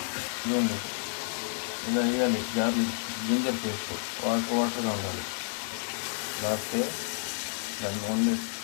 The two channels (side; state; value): right; silent; digital silence